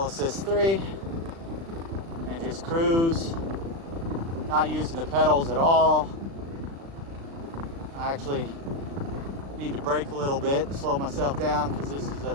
assist 3 and just cruise. Not using the pedals at all. I actually need to brake a little bit and slow myself down because this is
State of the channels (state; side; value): late; left; 36 ms